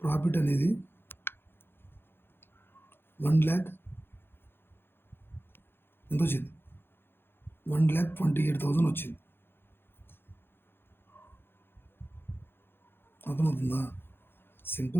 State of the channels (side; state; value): right; late; 0.10 ms